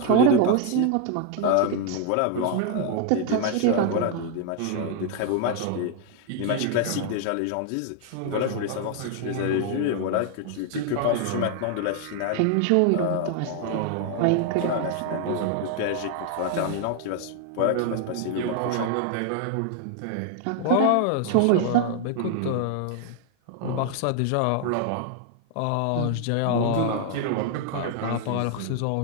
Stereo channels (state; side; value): different; both; correlation 0.00